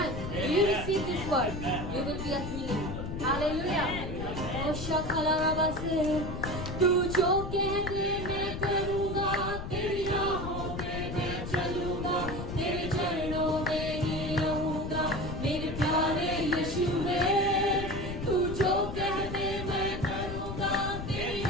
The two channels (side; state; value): left; noise; rumble, 6 dB below the sound